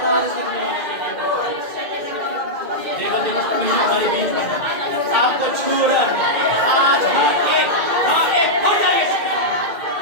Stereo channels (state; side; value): late; left; 2.1 ms